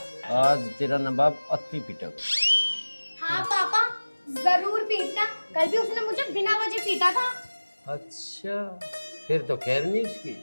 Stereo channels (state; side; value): inverted; both; correlation -1.00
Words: आज तेरा नवाब अति पिटक। हाँ पापा, जरूर पीटना। कल भी उसने मुझे बिना वजह पीटा था। अच्छा, फिर तो खैर नहीं उसकी।